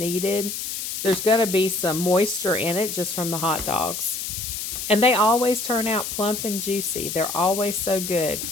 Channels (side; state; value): left; noise; hiss, 5 dB below the sound